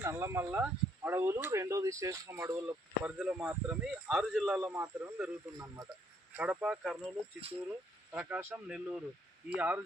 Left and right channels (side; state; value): both; normal; correlation 0.69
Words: నల్లమల్ల అడవులు, రెండోది శేషం అడవుల పరిధిలో మాత్రమే 6 జిల్లాల్లో మాత్రమే పెరుగుతుందన్నమాట. కడప, కర్నూలు, చిత్తూరు, ప్రకాశం, నెల్లూరు ఈ 6